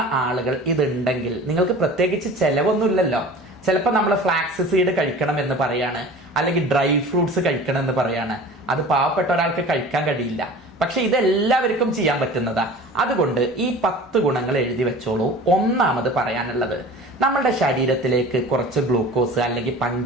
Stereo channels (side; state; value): both; normal; correlation 0.40